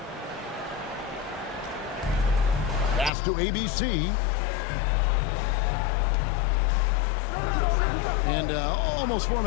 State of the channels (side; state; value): right; drops out; at 3.1 s